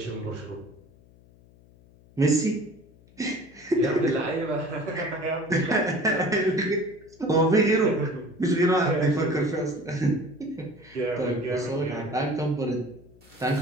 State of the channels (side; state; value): left; noise; hum, 26 dB below the sound